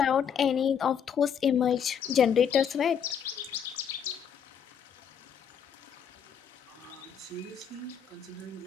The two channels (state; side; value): quieter; right; 7.8 dB